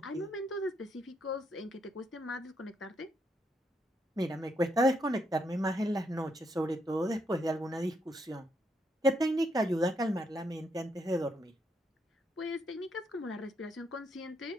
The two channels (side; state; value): both; normal; correlation 0.77